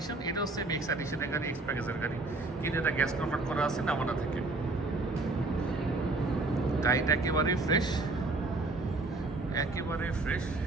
এটাও সেম এক্স এডিশনের গাড়ি, এক্সপ্যাকেজের গাড়ি, কিন্তু এটা গ্যাস কনভার্ট করা আছে নামানা থেকে। গাড়িটা একেবারেই ফ্রেশ, একেবারে ফ্রেশ,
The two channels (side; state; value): left; quieter; 3.2 dB